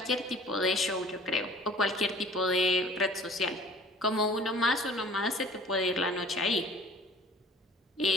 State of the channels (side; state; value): both; normal; correlation 0.48